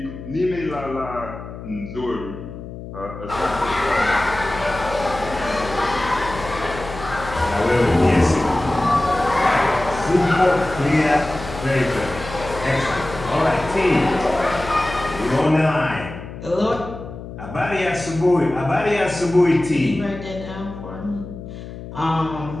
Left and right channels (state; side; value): noise; left; hum, 12 dB below the sound